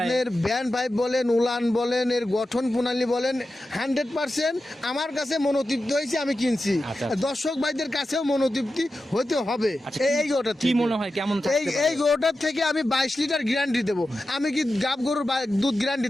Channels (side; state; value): both; normal; correlation 0.92